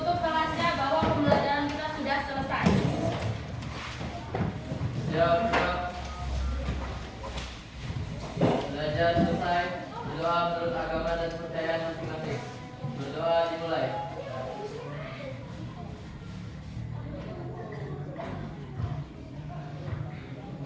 kelasnya bahwa pembelajaran kita sudah selesai. Siap. Belajar selesai. Berdoa menurut agama dan kepercayaan masing-masing. Berdoa dimulai.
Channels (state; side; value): identical; both; correlation 1.00